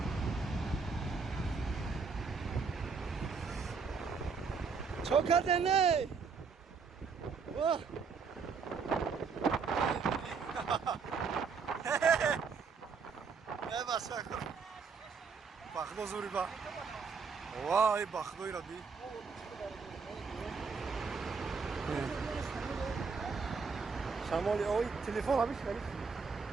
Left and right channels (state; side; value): quieter; left; 5.3 dB